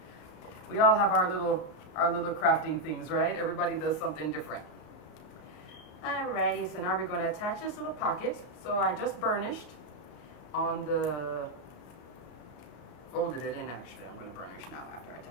We all have our little crafting things, right? Everybody does something different. Alrighty, so now we're going to attach this little pocket. So I just burnished on the, folded it in actually. I'm going to burnish now after I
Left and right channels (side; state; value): right; late; 33 ms